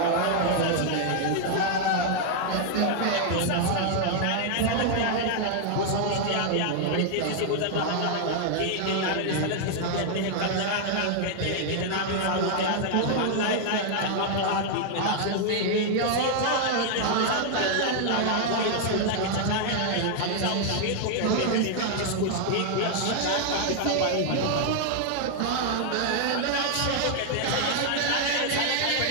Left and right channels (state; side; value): different; both; correlation 0.00